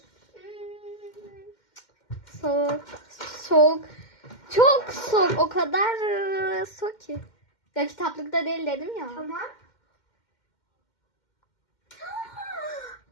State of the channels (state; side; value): late; right; 2.1 ms